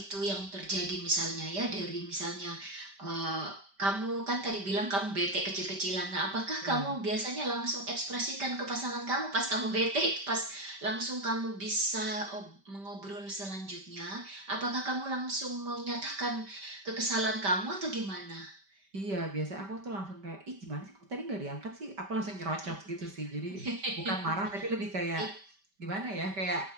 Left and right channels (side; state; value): left; late; 5.1 ms